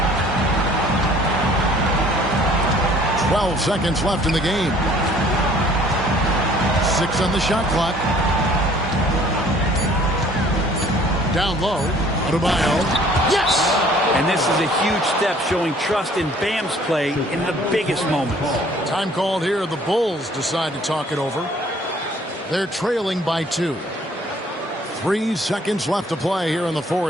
12 seconds left in the game. 6 on the shot clock. Down low. Adebayo. Yes! And this is a huge step showing trust in Bam's play in the biggest moments. Time called here. The Bulls decide to talk it over. They're trailing by 2. 3 seconds left to play here in the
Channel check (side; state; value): both; normal; correlation 0.56